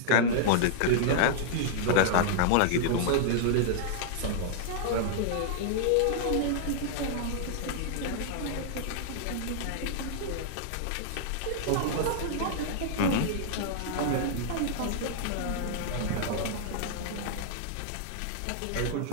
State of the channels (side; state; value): both; different; correlation -0.01